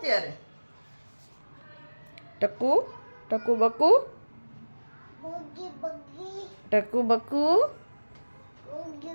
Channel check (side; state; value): both; inverted; correlation -1.00